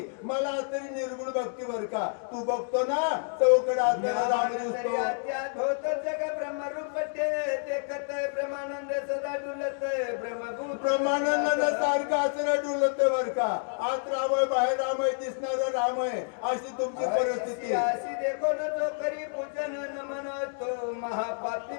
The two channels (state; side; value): silent; right; digital silence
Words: मला असणारी निर्गुण भक्ती बर का तू बघतो ना चौकड असणारा राम दिसतो जग ब्रह्मरूप देखत ब्रह्मानंद सदा डुलत ब्रह्मभूत ब्रह्मानंद सारखं असं डुलत बर का आत राम आहे बाहेर राम आहे दिसणारा राम आहे अशी तुमची परिस्थिती. अशी देखो न जो करी पूजन नमन तो महापापी